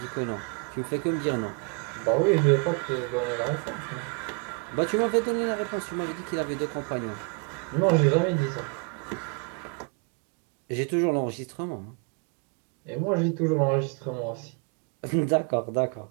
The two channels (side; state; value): left; quieter; 34.0 dB